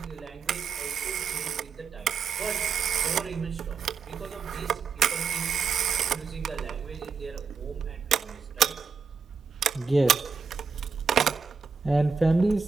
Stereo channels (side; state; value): left; quieter; 5.5 dB